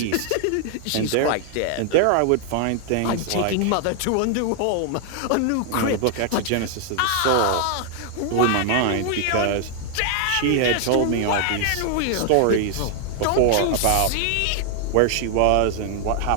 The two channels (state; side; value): different; both; correlation 0.00